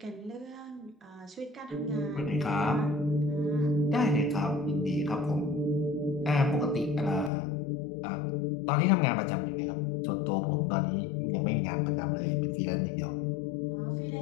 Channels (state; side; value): drops out; right; at 7.3 s